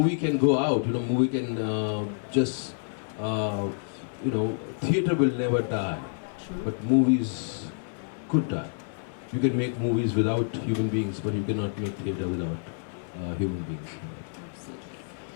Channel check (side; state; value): right; silent; 59 dB below the other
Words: can go out, movie can theatre will never die. True. But movies could die. You can make movies without human beings, but you cannot make theatre without human beings. Absolutely.